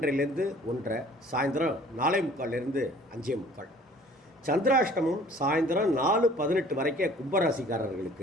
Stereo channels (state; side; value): normal; both; correlation 0.52